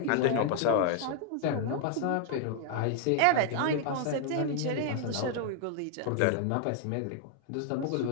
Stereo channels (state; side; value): different; both; correlation 0.00